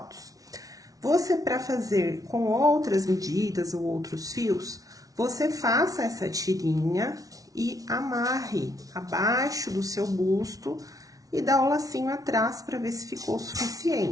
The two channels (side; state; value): left; late; 0.18 ms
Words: Você, para fazer com outras medidas ou outros fios, você faça essa tirinha e amarre abaixo do seu busto e dá o lacinho atrás para ver se ficou